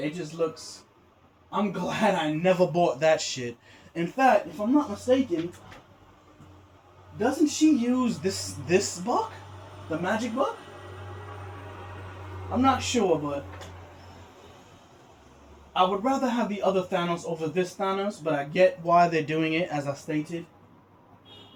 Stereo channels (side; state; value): both; identical; correlation 1.00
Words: just looks. I'm glad I never bought that shit. In fact, if I'm not mistaken, doesn't she use this buck, the magic buck? I'm not sure, but I would rather have the other Thanos over this Thanos, but I get why they're doing it, as I stated.